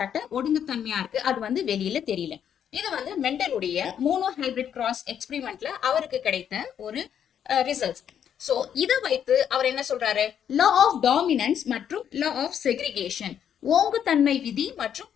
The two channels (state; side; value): quieter; right; 8.9 dB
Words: ஒடுங்குத்தன்மையா இருக்கு, அது வந்து வெளியில தெரியல. இது வந்து மெண்டலுடைய மோனோ ஹைபிரிட் கிராஸ் எக்ஸ்பிரிமெண்ட்ல அவருக்கு கிடைத்த ஒரு ரிசல்ட்ஸ். சோ இதை வைத்து அவர் என்ன சொல்றாரு, லா ஆஃப் டாமினன்ஸ் மற்றும் லா ஆஃப் செக்ரிகேஷன், ஓங்குத்தன்மை விதி மற்றும்